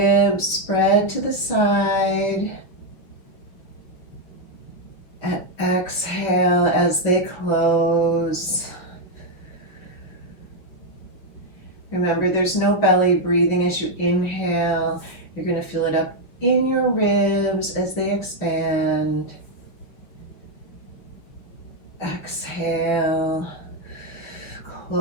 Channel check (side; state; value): right; late; 6.2 ms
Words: spread to the side. And exhale as they close. Remember, there's no belly breathing as you inhale. You're going to feel it up in your ribs as they expand. Exhale,